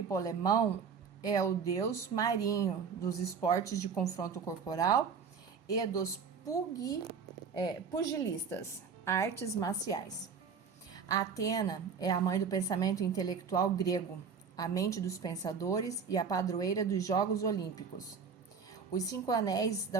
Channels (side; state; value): left; quieter; 6.0 dB